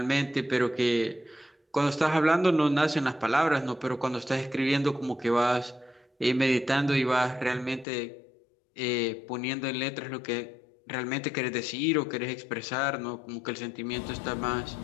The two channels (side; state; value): right; drops out; at 7.9 s